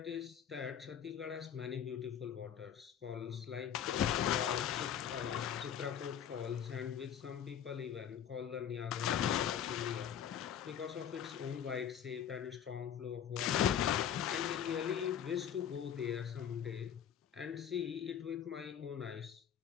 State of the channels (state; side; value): quieter; right; 9.2 dB